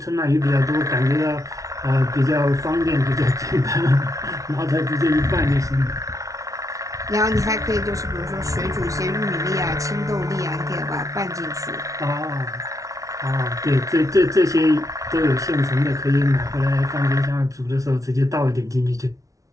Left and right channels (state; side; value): late; left; 0.17 ms